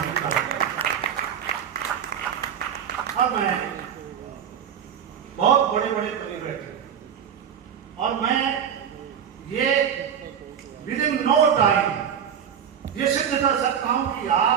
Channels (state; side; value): quieter; left; 8.3 dB